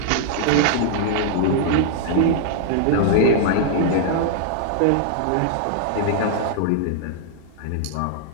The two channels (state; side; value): different; both; correlation -0.01